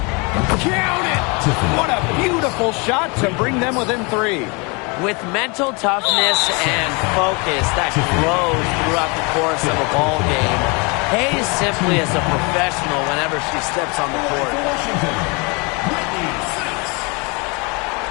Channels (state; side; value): quieter; right; 30.1 dB